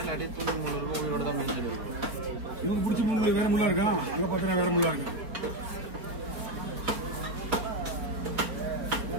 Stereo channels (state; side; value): late; left; 4.3 ms